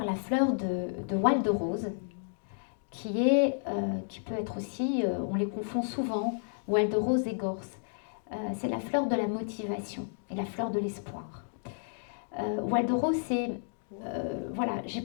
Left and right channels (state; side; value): silent; right; digital silence